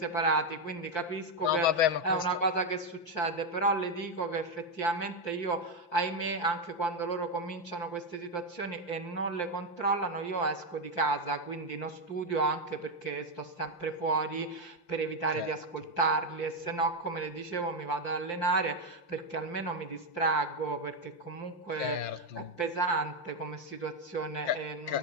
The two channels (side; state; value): right; late; 5.8 ms